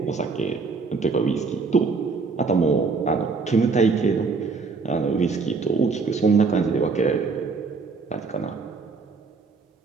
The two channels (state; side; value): quieter; left; 4.5 dB